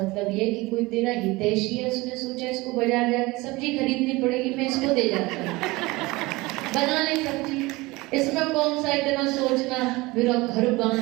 ये कि कोई तेरा हितैषी है, उसने सोचा इसको बाजार जाके सब्जी खरीदनी पड़ेगी, मैं इसको दे जाता हूँ, बना ले सब्जी। इसमें कौन सा इतना सोचना, मेरा घर बांध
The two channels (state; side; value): quieter; left; 22.0 dB